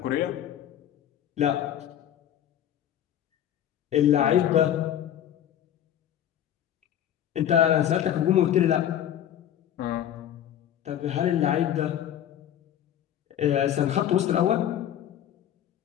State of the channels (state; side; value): quieter; right; 10.7 dB